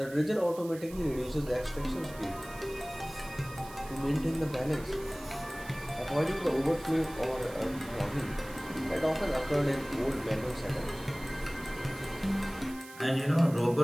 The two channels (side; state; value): right; noise; hiss, 18 dB below the sound